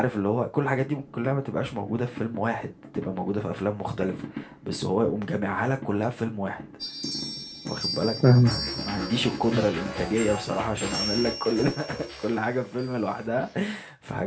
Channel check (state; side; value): identical; both; correlation 1.00